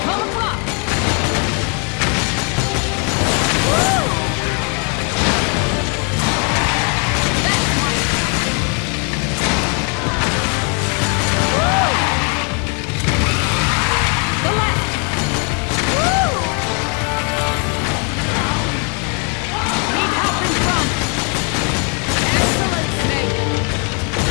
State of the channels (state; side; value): quieter; right; 36.8 dB